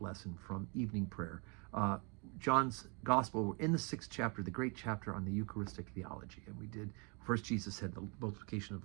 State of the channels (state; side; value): quieter; left; 33.4 dB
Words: lesson from evening prayer. John's Gospel, we're in the 6th chapter, the great chapter on the Eucharistic theology. And we did, first Jesus said the multiplication of